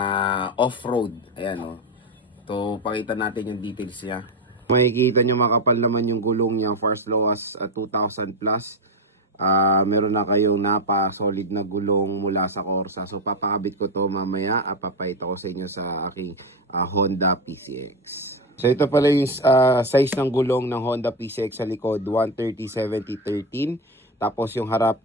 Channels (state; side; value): normal; both; correlation 0.13